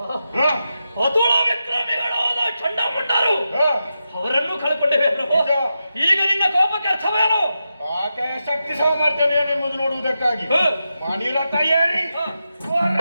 ಅತುಳ ವಿಕ್ರಮಿಗಳಾದ ಚಂಡಮುಂಡರು ಅವರನ್ನು ಕಳ್ಕೊಂಡೇವೆ ಪ್ರಭು. ಈಗ ನಿನ್ನ ಕೋಪಕ್ಕೆ ಅರ್ಥವೇನು? ಆಕೆಯ ಶಕ್ತಿ ಸಾಮರ್ಥ್ಯ ಏನೆಂಬುದು ನೋಡುವುದಕ್ಕಾಗಿ ಮಣಿರ ತಯಾರಿ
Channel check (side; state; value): both; inverted; correlation -0.88